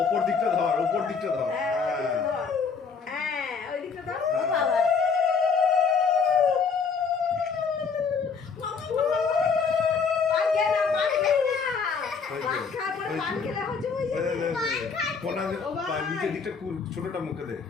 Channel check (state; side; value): quieter; right; 5.5 dB